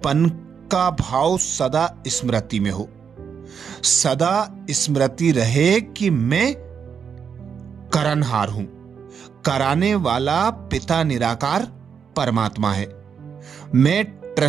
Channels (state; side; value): quieter; left; 6.9 dB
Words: का भाव सदा स्मृति में हो। सदा स्मृति रहे कि मैं करनहार हूं, कराने वाला पिता निराकार परमात्मा है। मैं